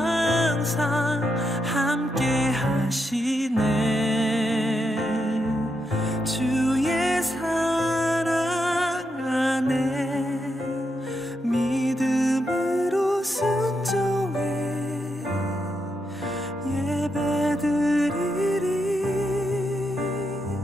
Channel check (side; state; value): both; normal; correlation 0.83